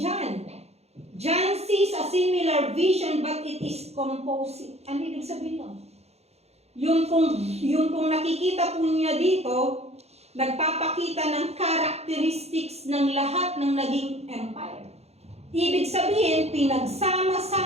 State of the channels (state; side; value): late; left; 0.31 ms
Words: John? John sees a similar vision but it is composite. Ano ibig sabihin nun? Yung kung nakikita po niya dito, nagpapakita ng characteristics ng lahat ng naging empire. Ibig sabihin,